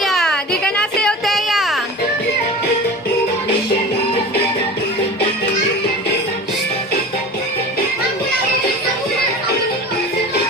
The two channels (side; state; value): both; normal; correlation 0.34